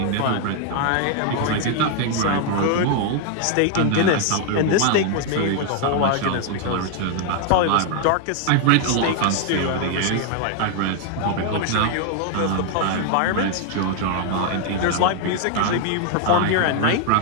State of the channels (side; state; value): both; different; correlation 0.00